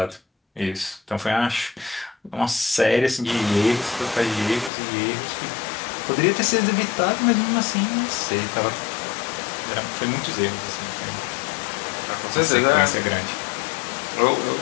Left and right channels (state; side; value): drops out; right; at 4.7 s